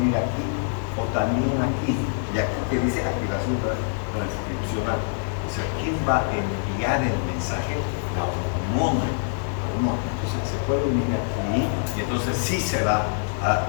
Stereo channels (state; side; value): silent; right; 62 dB below the other